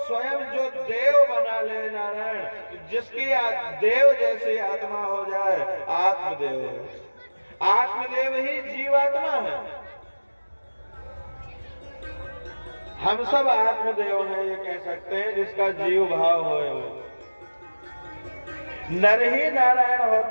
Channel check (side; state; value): both; inverted; correlation -1.00